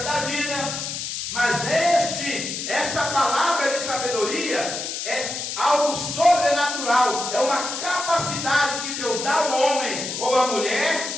da vida. Mas esta palavra de sabedoria é algo sobrenatural, é uma capacidade que Deus dá ao homem ou à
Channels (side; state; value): left; noise; hiss, 5 dB below the sound